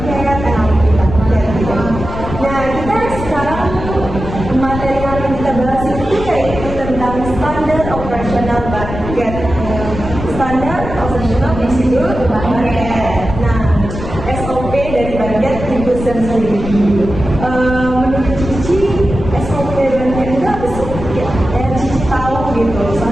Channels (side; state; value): left; noise; rumble, 8 dB below the sound